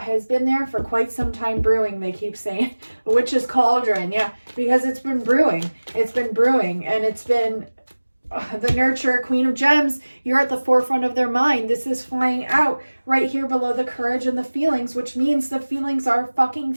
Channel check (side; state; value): both; inverted; correlation -1.00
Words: has been there for quite some time brewing, they keep saying. Witch's cauldron, yeah, because it's been brewing. It's been brewing, and it's been the nurturer, queen of gems. You're at the forefront of their mind. This is flying out right here below the courage and the feelings, which means the feelings are fucking